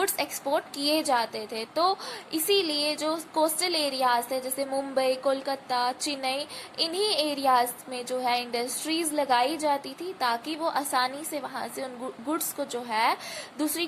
एक्सपोर्ट किए जाते थे। तो इसीलिए जो कोस्टल एरियाज थे जैसे मुंबई, कोलकाता, चेन्नई, इन्हीं एरियाज में जो है इंडस्ट्रीज लगाई जाती थी ताकि वो आसानी से वहाँ से उन गुड्स को जो है दूसरी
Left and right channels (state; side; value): identical; both; correlation 1.00